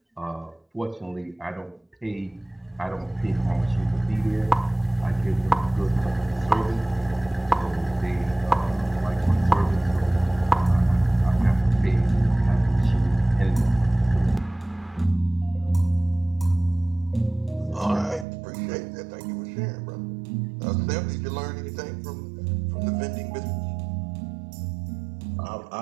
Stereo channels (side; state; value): left; drops out; at 18.2 s